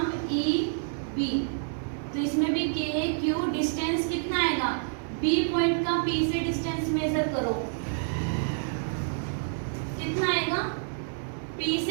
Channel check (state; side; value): silent; left; digital silence